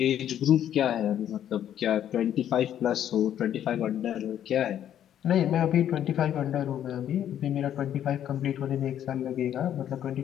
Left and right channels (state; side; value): quieter; right; 10.5 dB